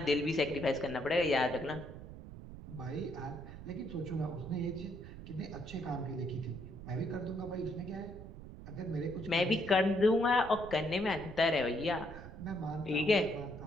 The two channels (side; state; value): right; noise; rumble, 13 dB below the sound